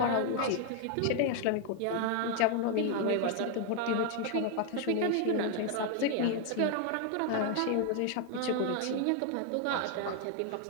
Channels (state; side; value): different; both; correlation 0.00